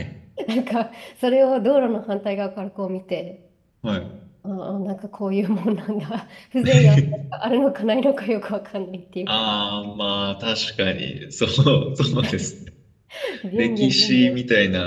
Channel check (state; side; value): identical; both; correlation 1.00